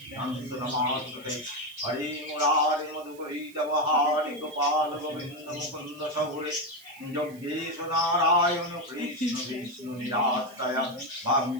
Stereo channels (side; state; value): right; noise; hiss, 23 dB below the sound